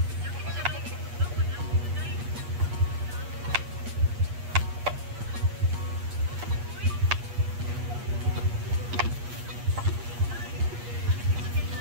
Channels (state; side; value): late; left; 8.4 ms